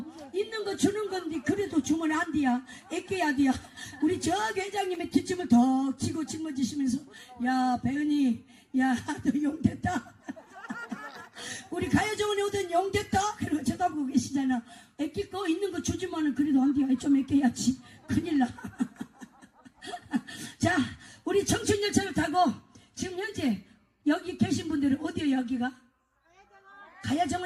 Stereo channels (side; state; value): both; identical; correlation 1.00